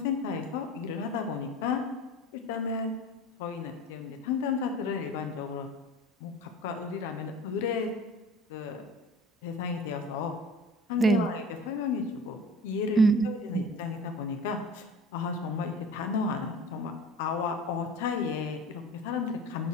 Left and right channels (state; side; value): normal; both; correlation 0.40